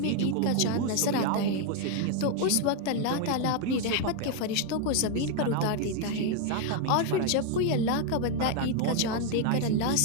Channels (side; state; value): both; different; correlation 0.00